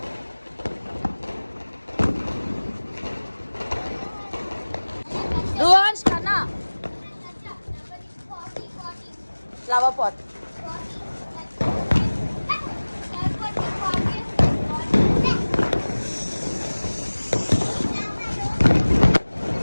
రువాన్స్ కన్నా ఫ్లవర్ పాట్.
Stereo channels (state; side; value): inverted; both; correlation -1.00